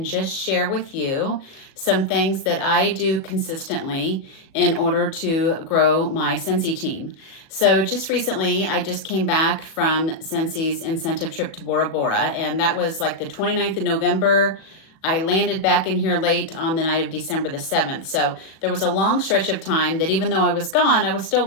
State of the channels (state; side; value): late; right; 37 ms